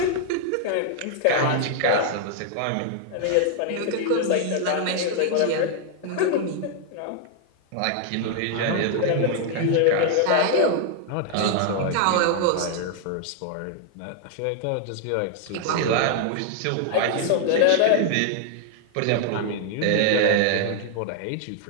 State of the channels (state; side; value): different; both; correlation 0.00